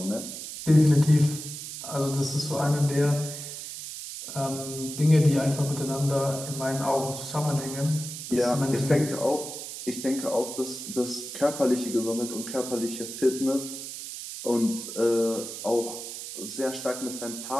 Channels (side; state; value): right; noise; hiss, 9 dB below the sound